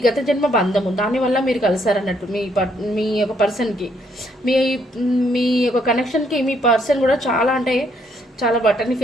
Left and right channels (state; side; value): normal; both; correlation 0.70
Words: గత జన్మ బంధము, దానివల్ల మీరు కలిసారన్నట్టు మీ యొక్క పర్సన్కి. మీ యొక్క కనెక్షన్కి మీ పర్సన్ కూడా చాలా అంటే చాలా బటన్ని